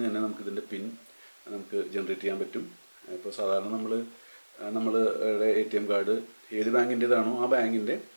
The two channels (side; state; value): both; inverted; correlation -1.00